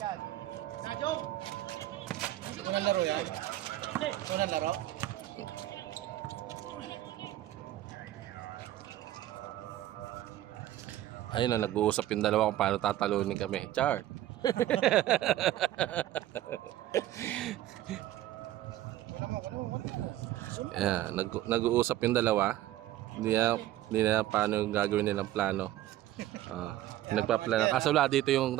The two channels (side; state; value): left; quieter; 14.2 dB